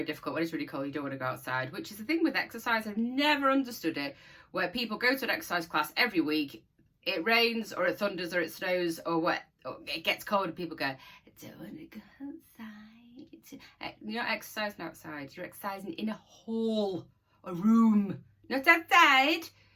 difficult when it's really cold. You don't want to go outside, which is the thing with exercise. I've never understood it, where people go to an exercise class every week. It rains or it thunders or it snows or what. It gets cold and people go, I don't want to go outside. You're not exercising outside. You're exercising in a hall, a room, not outside.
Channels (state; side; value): identical; both; correlation 1.00